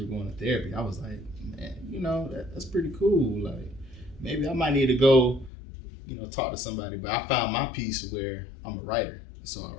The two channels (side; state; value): right; drops out; at 5.5 s